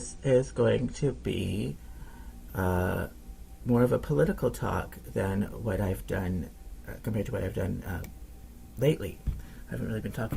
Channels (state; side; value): identical; both; correlation 1.00